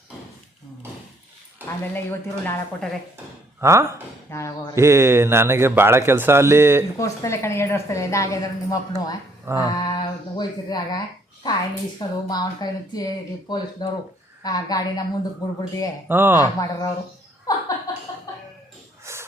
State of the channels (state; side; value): normal; both; correlation 0.66